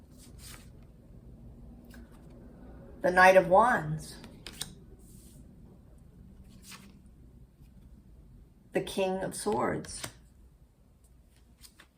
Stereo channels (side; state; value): both; identical; correlation 1.00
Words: The Knight of Wands. The King of Swords.